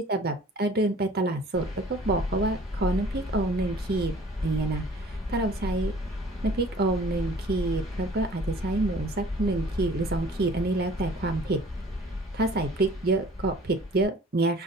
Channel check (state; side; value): normal; both; correlation 0.51